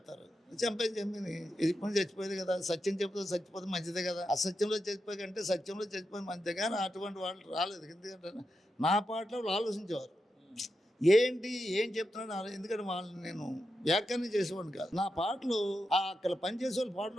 చంపేది ఇప్పుడు చచ్చిపోయేది కదా. సత్యం చెప్తే చచ్చిపోతే మంచిదే కదా. అసత్యంలో చచ్చిపోయి కంటే సత్యంలో చచ్చిపోయి మంచిదే. కానీ అటువంటి వాళ్ళు రాలేదు. ఎందుకంటే నా పాటలో వాళ్ళు ఆలోచించేవారు, ఏం చెప్తున్నాడు. ఎందుకంటే వాళ్ళని నేను వ్యాఖ్యానం చేసేవాడిని కాదు. నా పాటలు అక్కడ పనిచేసే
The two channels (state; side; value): normal; both; correlation 0.87